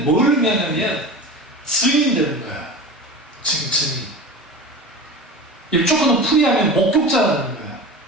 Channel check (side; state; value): both; normal; correlation 0.32